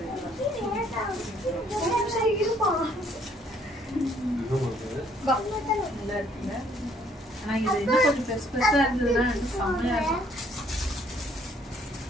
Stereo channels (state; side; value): normal; both; correlation 0.64